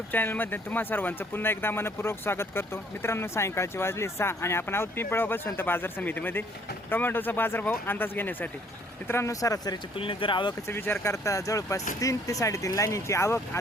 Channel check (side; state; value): both; normal; correlation 0.61